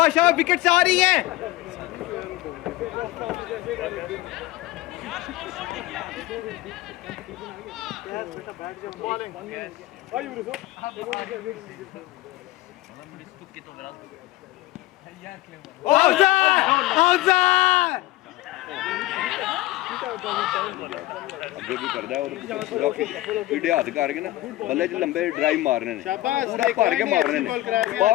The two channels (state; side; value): quieter; right; 17.7 dB